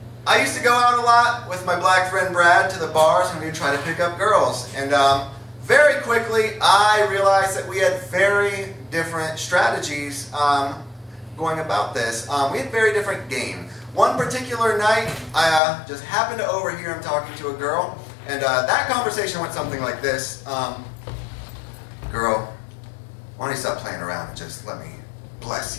I used to go out a lot with my black friend Brad to the bars and we'd try to pick up girls. And very quickly, I realized that we had very different strategies going about this. We had very different game. One particular night, I just happened to overhear him talking to a girl, and that conversation went something like this. Girl, why don't you stop playing around and just let me bless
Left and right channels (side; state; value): right; drops out; at 15.6 s